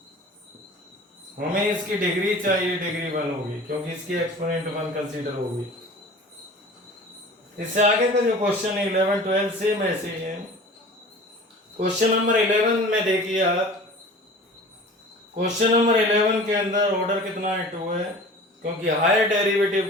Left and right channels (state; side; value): normal; both; correlation 0.41